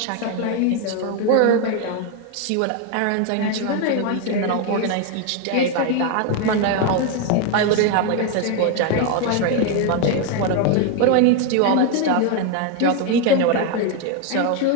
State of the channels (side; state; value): both; different; correlation 0.01